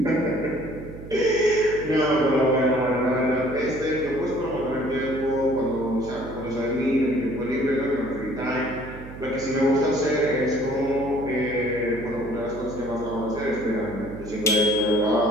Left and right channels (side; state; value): right; noise; hum, 14 dB below the sound